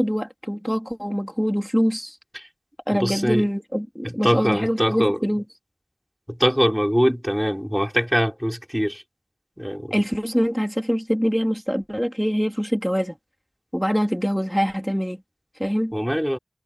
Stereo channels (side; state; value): both; identical; correlation 1.00